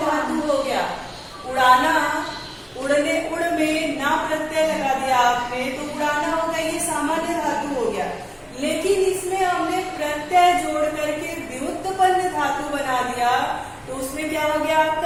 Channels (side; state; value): both; identical; correlation 1.00